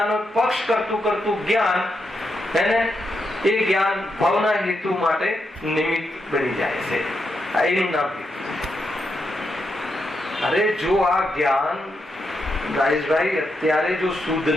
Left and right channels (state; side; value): normal; both; correlation 0.83